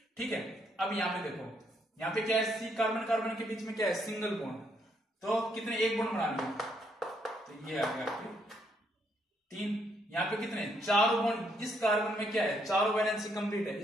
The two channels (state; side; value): normal; both; correlation 0.73